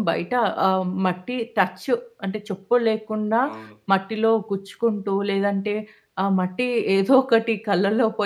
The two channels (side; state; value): both; identical; correlation 1.00